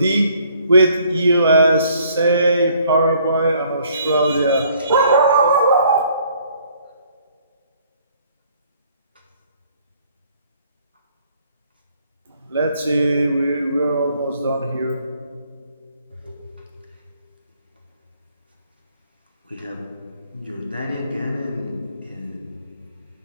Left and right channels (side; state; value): both; inverted; correlation -0.62